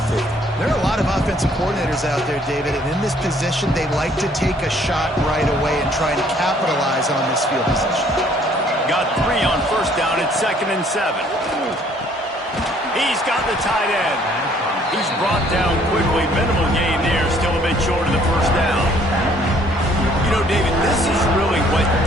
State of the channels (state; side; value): normal; both; correlation 0.61